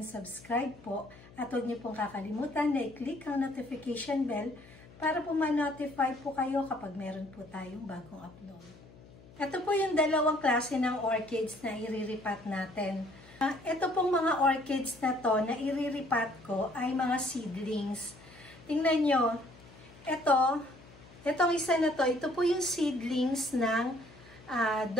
subscribe po. At huwag niyo pong kakalimutan na i-click ang notification bell para po ma-notify po kayo kapag meron po tayong bagong upload. Ito po yung dalawang klase ng orchids na i-repot natin. Ito pong mga orchids na to na i-repot ko ay mga seedlings. Tingnan nyo, itong isa na to, ito po yung seedlings ng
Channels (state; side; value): noise; left; hum, 22 dB below the sound